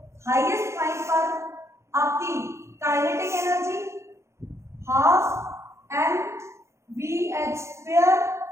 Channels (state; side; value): late; left; 0.14 ms